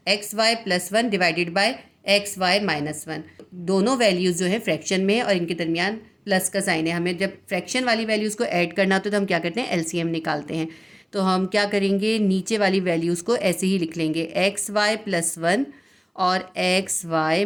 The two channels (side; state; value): both; identical; correlation 1.00